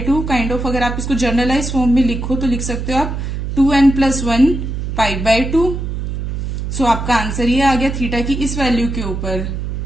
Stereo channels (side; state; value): right; noise; hum, 4 dB below the sound